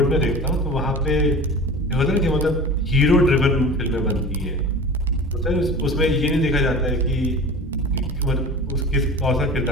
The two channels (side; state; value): both; normal; correlation 0.36